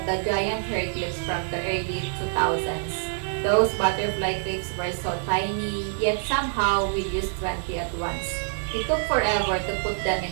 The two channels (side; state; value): left; silent; digital silence